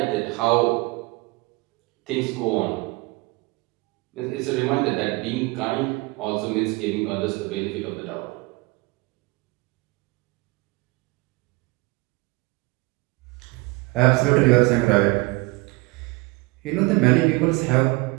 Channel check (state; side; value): quieter; left; 24.2 dB